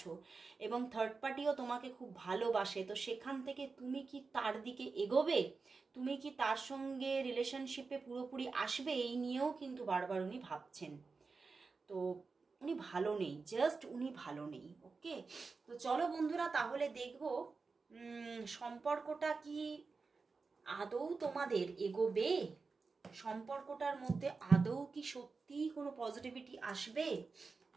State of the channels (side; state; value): left; quieter; 4.4 dB